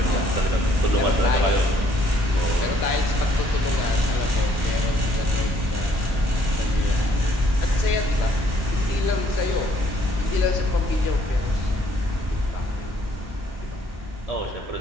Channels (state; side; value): normal; both; correlation 0.64